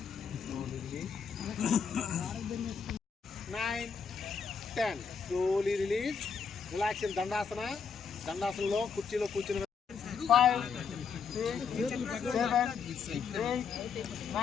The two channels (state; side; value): quieter; right; 6.1 dB